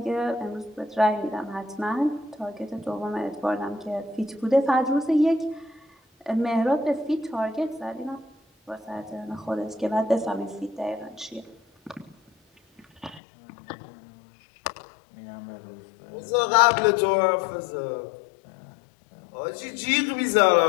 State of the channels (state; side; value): drops out; right; at 13.2 s